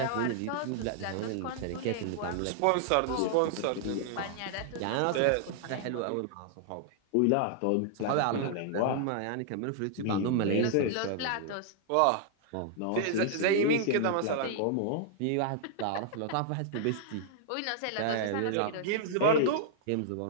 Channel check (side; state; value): both; different; correlation -0.01